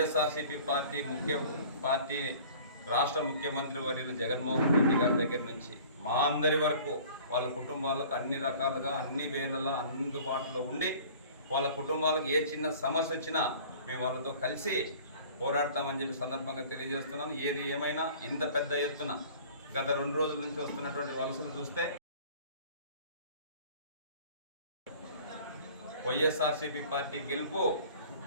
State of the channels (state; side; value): inverted; both; correlation -0.47